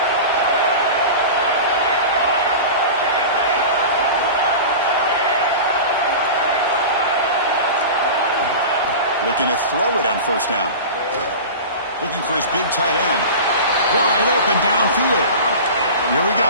Looking to throw it on first down. Looking for his big tight end. Wide open downfield. Here we go.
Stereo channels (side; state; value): both; inverted; correlation -0.32